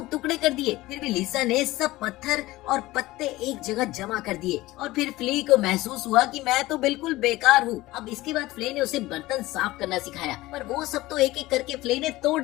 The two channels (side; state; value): right; quieter; 18.3 dB